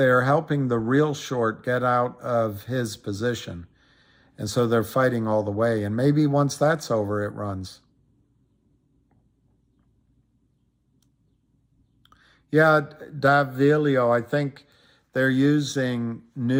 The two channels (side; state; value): both; identical; correlation 1.00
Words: helping the real short get out of his position. And so they're fighting all the way. And maybe once that's over, it runs. Yeah, Davilio, I think they're using